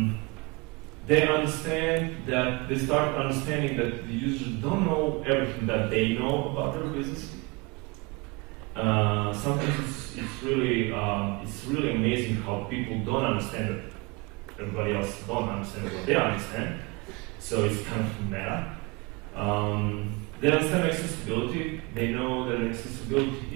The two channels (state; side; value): quieter; left; 26.9 dB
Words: They start understanding that the users don't know everything that they know about their business. Sometimes it's really amazing how people don't understand that everybody else don't understand what they understand. So it's kind of meta. They understand accessibility. They know that